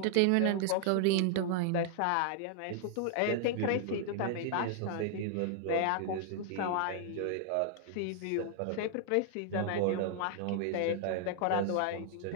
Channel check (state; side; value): different; both; correlation 0.00